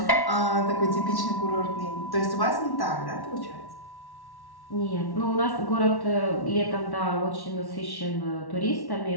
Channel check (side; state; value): right; late; 1.1 ms